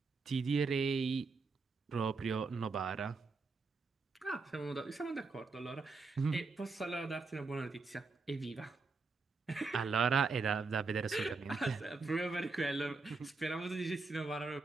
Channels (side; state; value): left; quieter; 4.1 dB